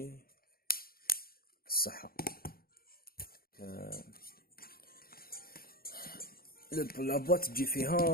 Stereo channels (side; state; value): right; late; 0.43 ms